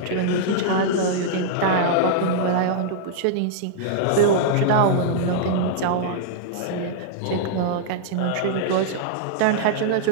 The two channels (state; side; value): different; both; correlation -0.02